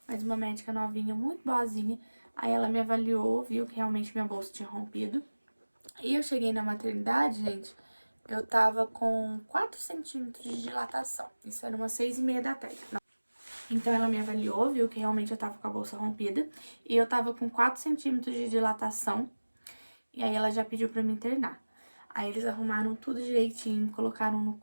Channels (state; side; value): inverted; both; correlation -1.00